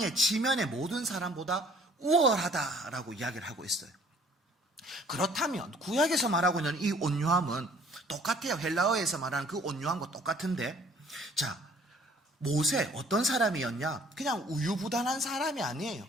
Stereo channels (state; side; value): normal; both; correlation 0.56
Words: 지면의 모든 사람보다 우월하다라고 이야기를 하고 있어요. 그렇다면 구약에서 말하고 있는 이 온유함은 똑같아요. 헬라어에서 말하는 그 온유함과 똑같은데, 자, 모세 어떤 사람이었냐? 그냥 우유부단한 사람이 아니에요.